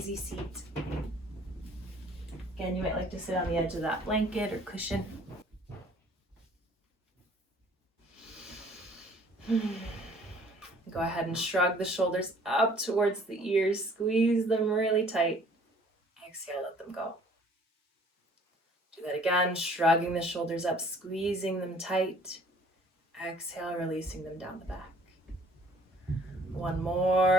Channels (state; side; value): normal; both; correlation 0.56